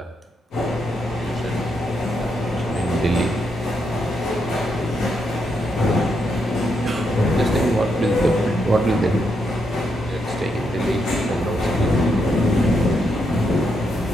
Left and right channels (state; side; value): normal; both; correlation 0.80